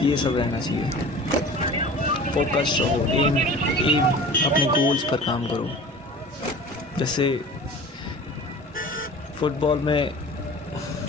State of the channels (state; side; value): normal; both; correlation 0.40